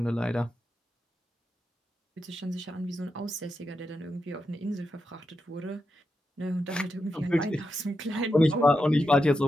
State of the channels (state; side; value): normal; both; correlation 0.87